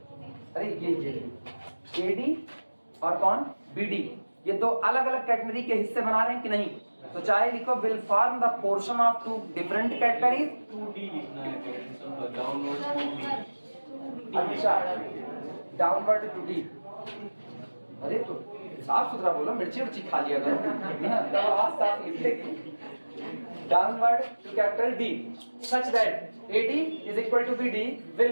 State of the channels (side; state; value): both; inverted; correlation -1.00